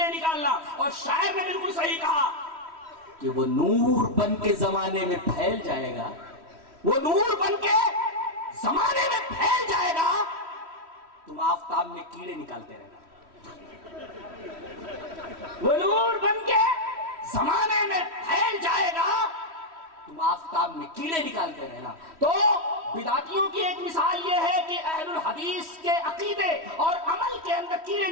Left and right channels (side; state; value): left; late; 3.1 ms